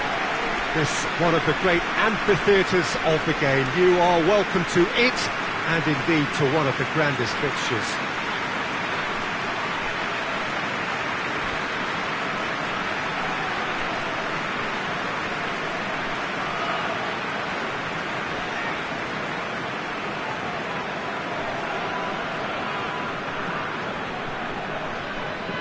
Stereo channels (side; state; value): both; identical; correlation 1.00